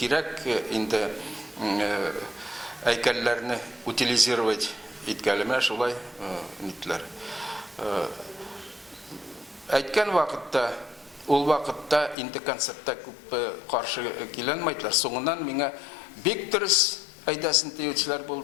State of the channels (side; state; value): right; drops out; at 12.2 s